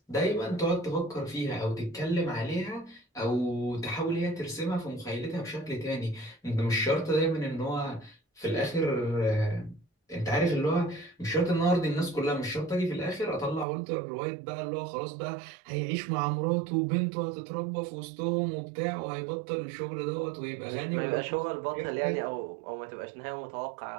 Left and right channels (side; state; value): left; drops out; at 13.7 s